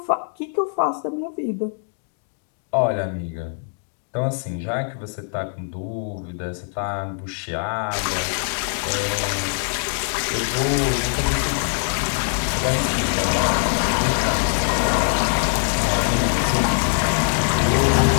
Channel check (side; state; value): right; silent; digital silence